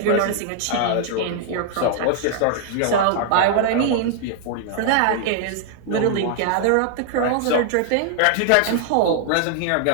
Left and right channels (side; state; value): both; different; correlation -0.01